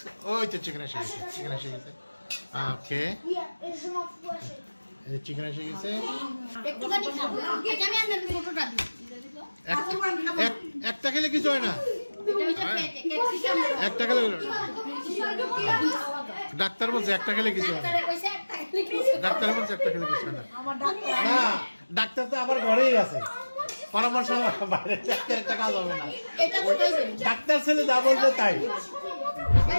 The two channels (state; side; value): inverted; both; correlation -1.00